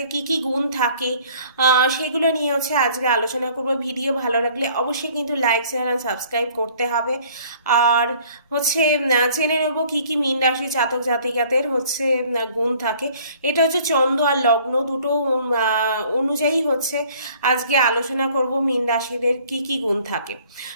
কি কি গুণ থাকে সেগুলো নিয়ে আজকে আলোচনা করব। ভিডিও ভালো লাগলে অবশ্যই কিন্তু লাইক শেয়ার আর সাবস্ক্রাইব করতে হবে। আর জেনে নেব কি কি মীন রাশির জাতক জাতিকাদের গুণ থাকে। এটা চন্দ্র আর লগ্ন দুটো অনুযায়ী আজকে আলোচনা করব মীন রাশিদের কি কি গুণ থাকে।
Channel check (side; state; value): both; inverted; correlation -0.55